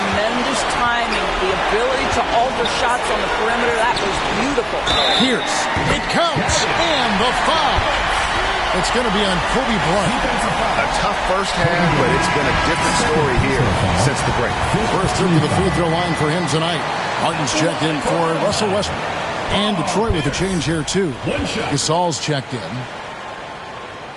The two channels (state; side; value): identical; both; correlation 1.00